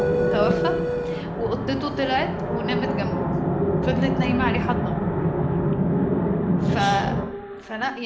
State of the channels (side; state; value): both; identical; correlation 1.00